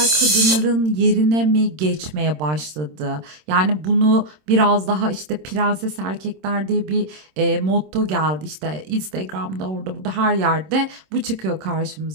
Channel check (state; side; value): late; left; 26 ms